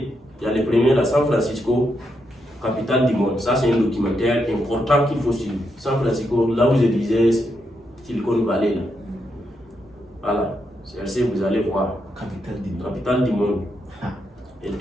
Il y a les premiers là, San Francisco, capitale du monde. Ça, c'est un documentaire important qu'il faut suivre. San Francisco, là où je disais Silicon Valley. Là. Voilà. C'est vous allez voir. Capitale du monde. Et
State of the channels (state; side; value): normal; both; correlation 0.81